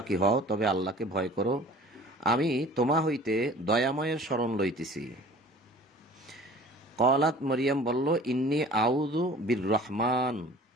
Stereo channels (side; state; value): both; normal; correlation 0.46